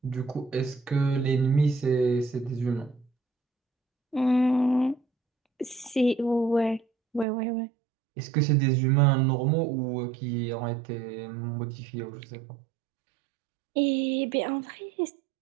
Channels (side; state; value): left; drops out; at 7.2 s